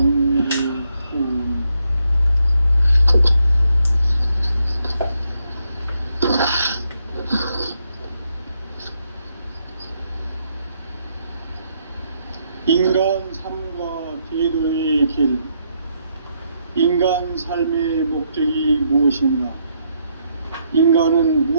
인간 삶과 계도의 길. 인간 삶의 목적이 무엇인가? 인간은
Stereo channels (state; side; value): inverted; both; correlation -0.77